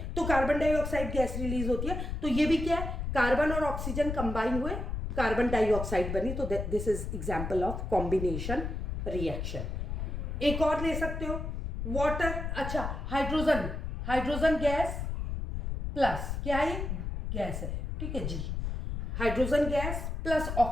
तो कार्बन डाइऑक्साइड गैस रिलीज होती है, तो ये भी क्या है, कार्बन और ऑक्सीजन कंबाइन हुए, कार्बन डाइऑक्साइड बनी, तो this is example of combination reaction. एक और ले सकते हो, वाटर, अच्छा हाइड्रोजन, हाइड्रोजन गैस प्लस क्या है, गैस है, ठीक है जी, hydrogen gas plus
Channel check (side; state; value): left; noise; rumble, 4 dB below the sound